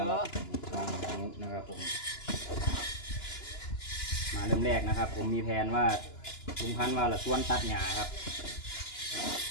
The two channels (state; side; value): late; right; 2.9 ms